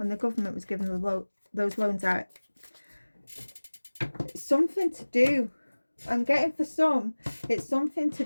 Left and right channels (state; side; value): inverted; both; correlation -1.00